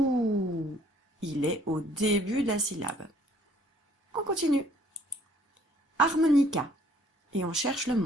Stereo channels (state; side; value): normal; both; correlation 0.60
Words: Il est au début de la syllabe. On continue. Harmonica. Et on cherche le